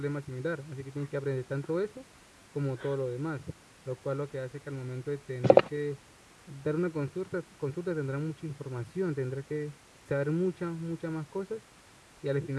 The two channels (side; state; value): both; identical; correlation 1.00